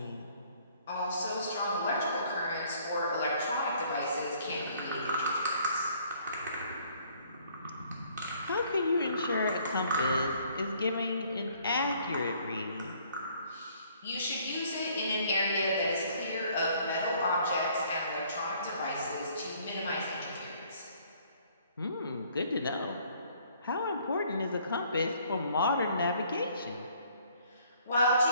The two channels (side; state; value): both; inverted; correlation -0.61